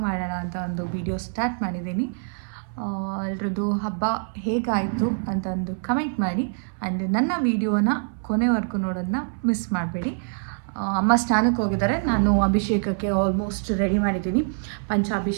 ಮಾಡೋಣ ಅಂತ ಒಂದು ವಿಡಿಯೋ ಸ್ಟಾರ್ಟ್ ಮಾಡಿದ್ದೀನಿ. ಎಲ್ರದ್ದು ಹಬ್ಬ ಹೇಗಾಯಿತು ಅಂತ ಒಂದು ಕಮೆಂಟ್ ಮಾಡಿ. ಆ್ಯಂಡ್ ನನ್ನ ವಿಡಿಯೋನ ಕೊನೆವರೆಗೂ ನೋಡೋದನ್ನ ಮಿಸ್ ಮಾಡಬೇಡಿ. ಅಮ್ಮ ಸ್ನಾನಕ್ಕೆ ಹೋಗಿದ್ದಾರೆ, ನಾನು ಅಭಿಷೇಕಕ್ಕೆ ಆಲ್ಮೋಸ್ಟ್ ರೆಡಿ ಮಾಡಿದ್ದೀನಿ.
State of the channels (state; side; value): silent; left; 61 dB below the other